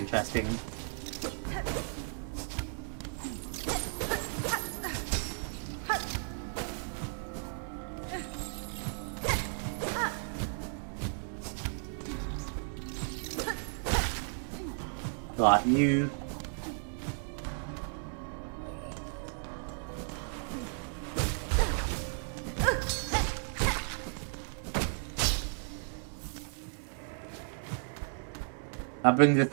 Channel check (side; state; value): left; silent; 55 dB below the other